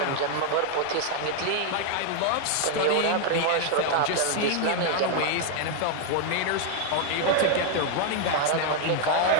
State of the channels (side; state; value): both; different; correlation 0.00